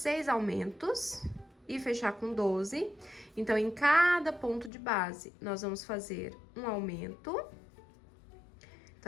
aumentos e fechar com 12. Então, em cada ponto de base, nós vamos fazer um aumento.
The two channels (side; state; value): right; drops out; at 4.7 s